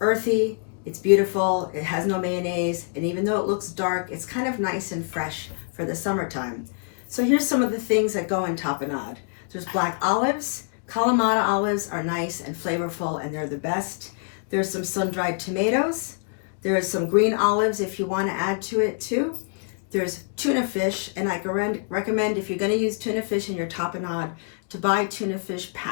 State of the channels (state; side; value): silent; right; 58 dB below the other